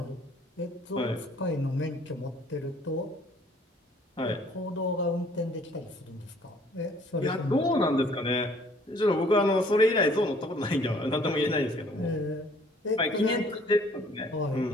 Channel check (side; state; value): both; normal; correlation 0.58